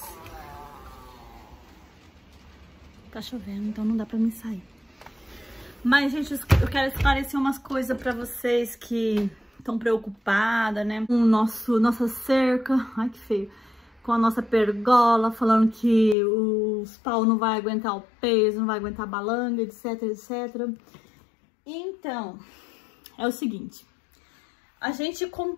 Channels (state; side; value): drops out; right; at 16.2 s